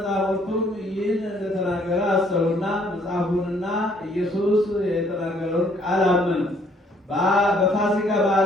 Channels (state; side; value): normal; both; correlation 0.63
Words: ይህን እንደተናገረ አሰቡና መጽሐፉንና ኢየሱስ የተናገረውን ቃል አመኑ። በፋሲካ